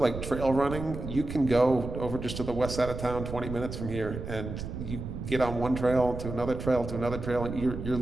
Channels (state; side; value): noise; right; rumble, 7 dB below the sound